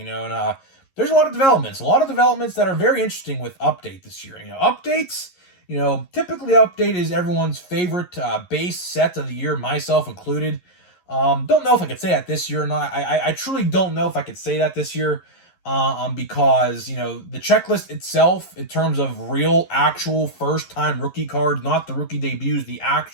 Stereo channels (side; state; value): right; late; 11 ms